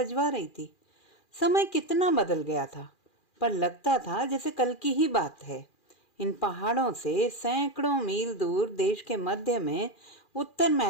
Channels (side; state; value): right; late; 2.4 ms